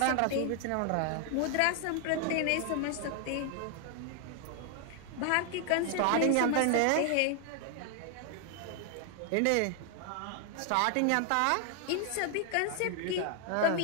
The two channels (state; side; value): different; both; correlation 0.00